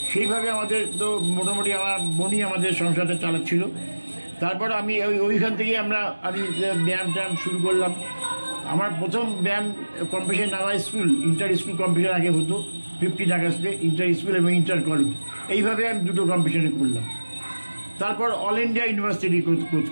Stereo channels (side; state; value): both; inverted; correlation -1.00